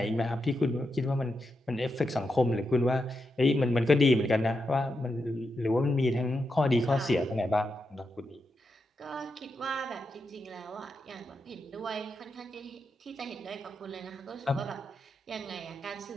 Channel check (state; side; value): normal; both; correlation 0.86